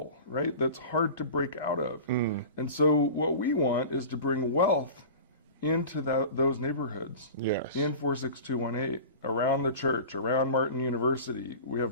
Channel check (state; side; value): inverted; both; correlation -0.36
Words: right, that's hard to break out of. And so what we want is to bring wealth into those neighborhoods. Yes. In 46218, around the church, around Martin University. We